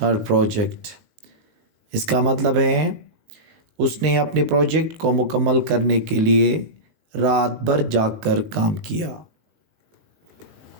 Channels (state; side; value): late; left; 19 ms